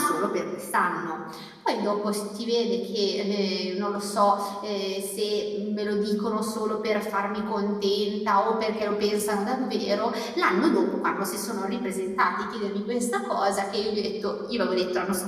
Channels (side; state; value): both; identical; correlation 1.00